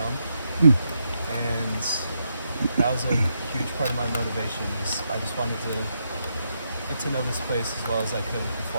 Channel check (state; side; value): inverted; both; correlation -0.81